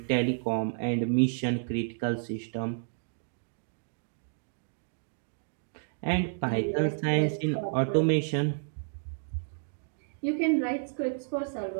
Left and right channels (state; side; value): silent; left; digital silence